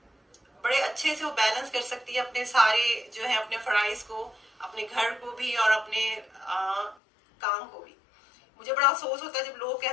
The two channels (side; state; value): right; drops out; at 7.0 s